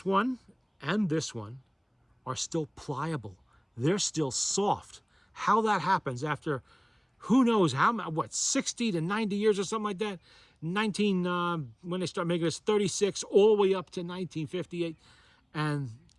one and this one are still pliable. They're still soft. How that happens after who knows how, 60 to 90 years or something like that. When they start making this, 36 all the way up to 1958. And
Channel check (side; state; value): both; identical; correlation 1.00